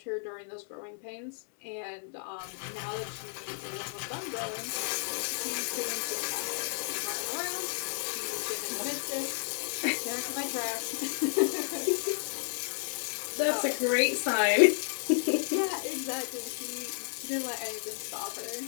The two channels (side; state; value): right; silent; 56 dB below the other